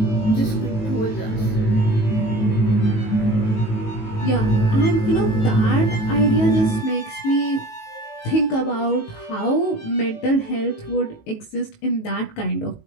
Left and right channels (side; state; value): right; late; 19 ms